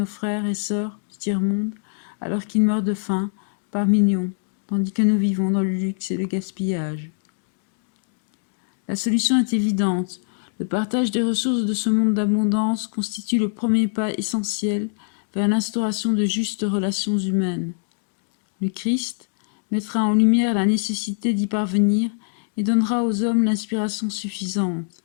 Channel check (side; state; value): right; silent; digital silence